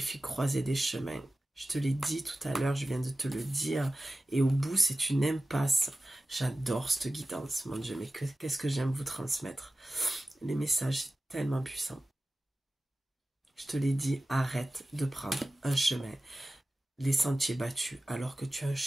croisée des chemins. Je te l'ai dit tout à l'heure, je viens de te le dire. Et au bout, c'est une impasse. J'adore cette guidance, mon Dieu, mais qu'est-ce que j'aime vous transmettre. Les messages, c'est tellement puissant. Je te l'ai dit, arrête de prendre un chemin. Les sentiers battus, alors que tu as un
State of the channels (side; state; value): both; normal; correlation 0.95